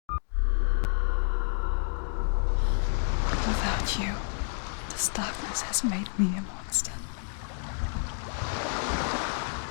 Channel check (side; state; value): right; silent; digital silence